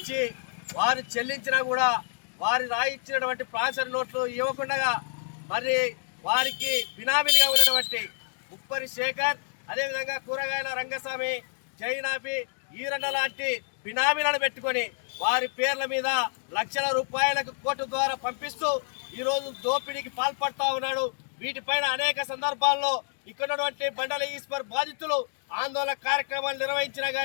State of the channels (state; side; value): silent; right; digital silence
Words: వారు చెల్లించినా కూడా వారి రాయిచ్చినటువంటి ప్రాసరీ నోట్లు ఇవ్వకుండా మరి వారికి బినామీలుగా ఉన్నటువంటి ఉప్పరి శేఖర్, అదేవిధంగా కూరగాయల రంగస్వామి, జైనాపి, ఈరన్న లాంటి బినామీలను పెట్టుకొని వారి పేర్ల మీద లక్షల రూపాయలకు కోర్టు ద్వారా పంపిస్తూ ఈరోజు దోపిడీకి పాల్పడతా ఉన్నాడు. వీటిపైన అనేక సందర్భాల్లో ఇక్కడ మండలి ఈశ్వర్ బాధితులు ఆందోళన కార్యక్రమాలు నిర్వహించినా